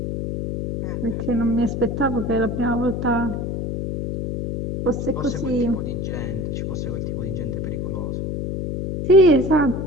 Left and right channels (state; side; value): noise; left; hum, 3 dB below the sound